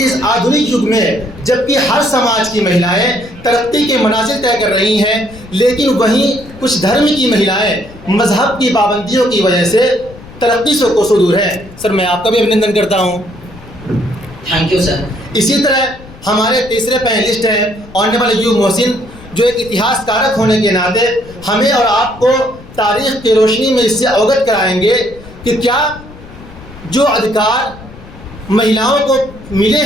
آدھنک یگ میں جبکہ ہر سماج کی مہیلائیں ترقی کے منازل طے کر رہی ہیں، لیکن وہیں کچھ دھرم کی مہیلائیں مذہب کی پابندیوں کی وجہ سے ترقی سے کوسوں دور ہیں۔ سر میں آپ کا بھی ابھیندن کرتا ہوں۔ Thank you sir. اسی طرح ہمارے تیسرے پینلسٹ ہیں آنریبل ایوب محسن، جو ایک اتہاس کارک ہونے کے ناطے ہمیں اور آپ کو تاریخ کی روشنی میں اس سے اوگت کرائیں گے کہ کیا جو ادھیکار مہیلاؤں کو ملے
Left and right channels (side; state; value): left; noise; rumble, 19 dB below the sound